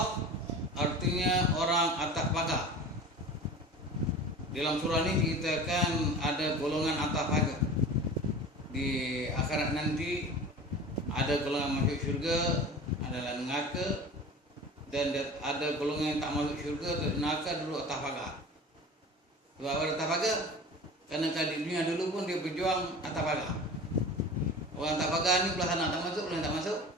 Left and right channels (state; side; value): normal; both; correlation 0.37